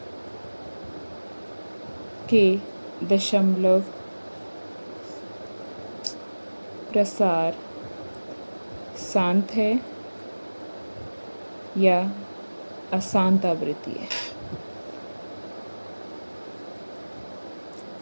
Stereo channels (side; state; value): both; inverted; correlation -1.00